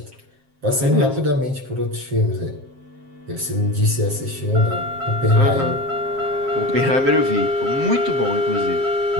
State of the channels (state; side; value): late; left; 7.5 ms